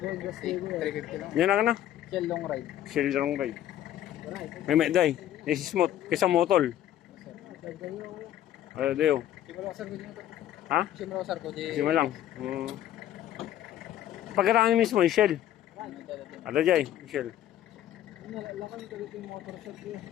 lang. Yan na. Chill long ride. Shell long ride. Right. May day. This is smooth. Kisa motol. Ano dayo? Simula ko, sir, ko dito. Ha? Simula ko, sir, ko dito. Sima lang. Pagkaraan mismo, yung shell. Ada jay, shell. Lakan talaga yung motor shop yun.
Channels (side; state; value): right; quieter; 12.0 dB